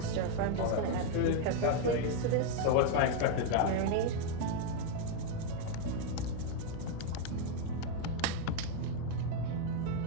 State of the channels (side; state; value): both; different; correlation 0.00